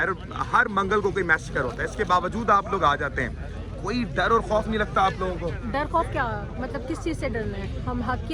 हर मंगल को कोई मैसेकर होता है, इसके बावजूद आप लोग आ जाते हैं। कोई डर और खौफ नहीं लगता आप लोगों को? डर खौफ क्या, मतलब किस चीज़ से डरना है? हम हक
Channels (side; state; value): both; identical; correlation 1.00